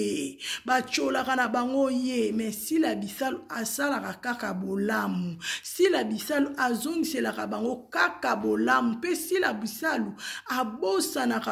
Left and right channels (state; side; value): identical; both; correlation 1.00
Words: bacholaka na bango ye mais sila bisalu asalaka kaka bolamu sila bisalu azongiselaka bango kaka bolamu pe sila bisalu